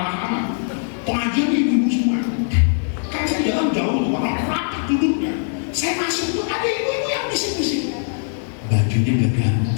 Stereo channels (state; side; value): silent; right; 64 dB below the other